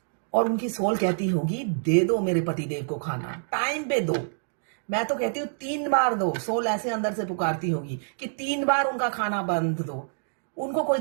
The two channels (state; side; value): silent; left; digital silence